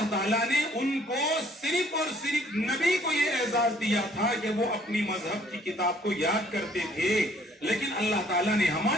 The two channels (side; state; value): both; normal; correlation 0.60